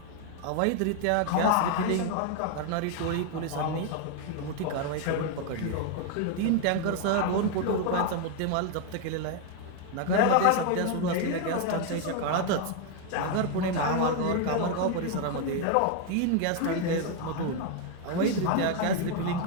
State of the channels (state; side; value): different; both; correlation 0.01